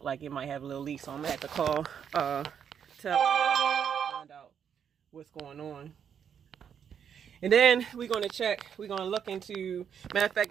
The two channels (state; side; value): quieter; left; 8.0 dB